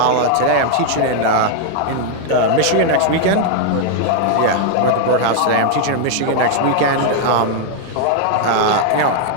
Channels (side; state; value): both; different; correlation 0.00